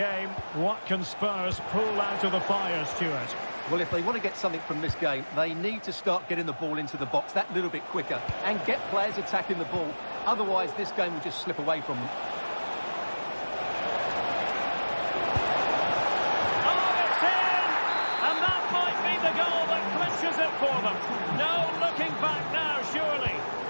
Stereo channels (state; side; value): inverted; both; correlation -1.00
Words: what can Spurs pull out of the fire, Stuart? Well, if they want to get something from this game, they need to start getting the ball into the box that little bit quicker and get players attacking the ball. Otherwise, this game will just slip away from them. Oh, it's in! And that might be the goal that clinches it for them. No looking back now, surely.